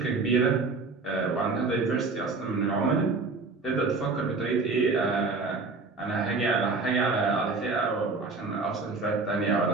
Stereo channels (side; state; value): left; quieter; 4.0 dB